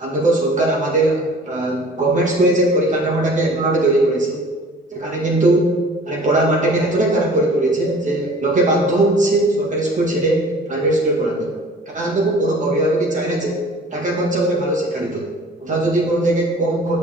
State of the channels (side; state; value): both; normal; correlation 0.47